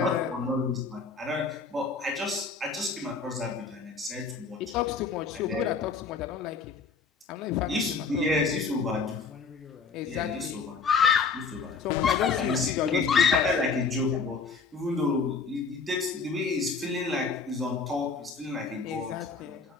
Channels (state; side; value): quieter; right; 4.8 dB